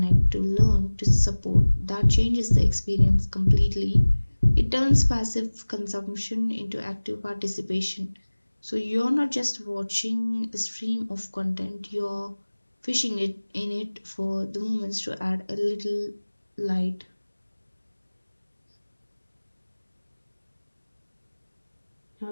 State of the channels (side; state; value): both; inverted; correlation -1.00